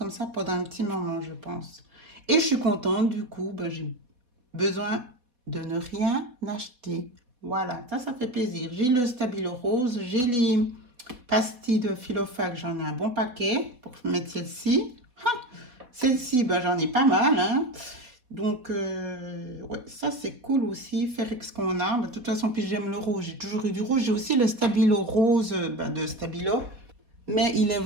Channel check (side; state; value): left; late; 4.0 ms